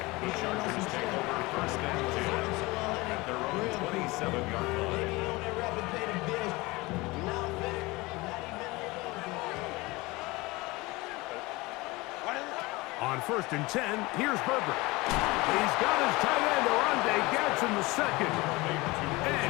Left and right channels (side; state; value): right; quieter; 22.5 dB